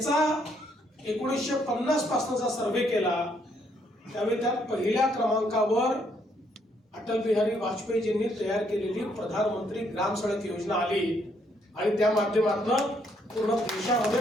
1950 पासूनचा सर्वे केला, त्यावेळी त्यात पहिल्या क्रमांकावर अटल बिहारी वाजपेयीजींनी तयार केलेली प्रधानमंत्री ग्राम सडक योजना आली आणि त्या माध्यमातून पूर्ण देशामध्ये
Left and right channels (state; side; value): normal; both; correlation 0.71